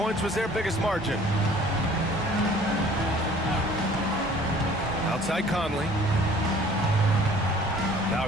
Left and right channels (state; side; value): normal; both; correlation 0.52